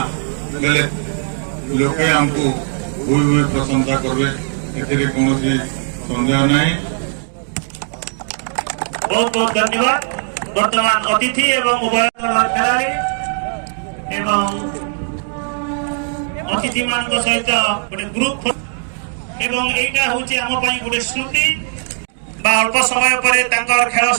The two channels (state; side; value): silent; left; 58 dB below the other